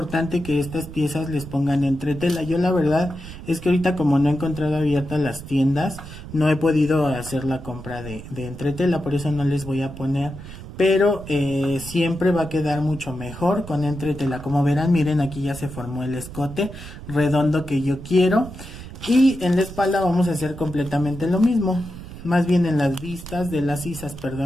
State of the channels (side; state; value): right; noise; rumble, 13 dB below the sound